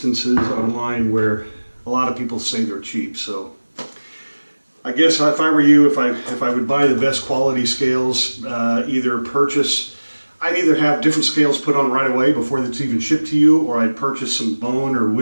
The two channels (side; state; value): both; inverted; correlation -1.00